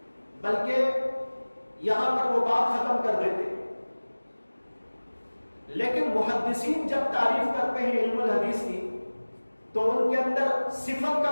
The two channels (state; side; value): inverted; both; correlation -1.00